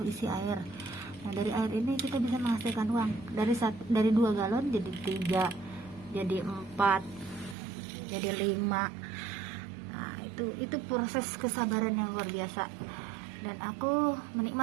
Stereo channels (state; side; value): drops out; left; at 7.6 s